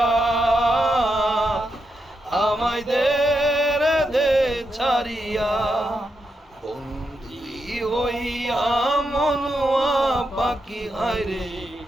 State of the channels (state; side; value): normal; both; correlation 0.84